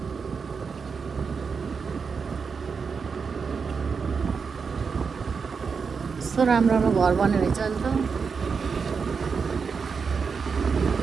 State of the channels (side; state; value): left; quieter; 5.6 dB